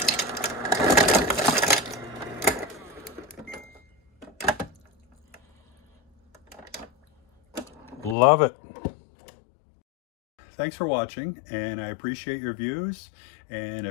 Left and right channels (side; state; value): right; drops out; at 8.2 s